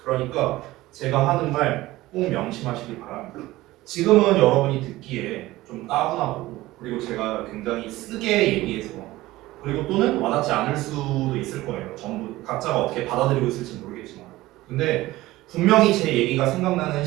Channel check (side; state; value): left; quieter; 17.7 dB